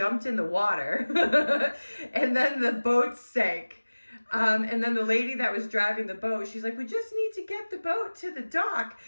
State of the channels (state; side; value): inverted; both; correlation -1.00